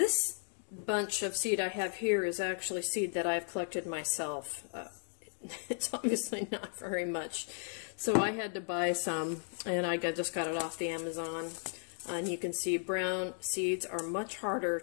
bunch of seed I have here is actually seed that I've collected myself. It's obviously not very much, so I had to buy some, and I just got it off the Amazon. And you can see brown seeds are much harder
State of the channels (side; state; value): right; silent; 54 dB below the other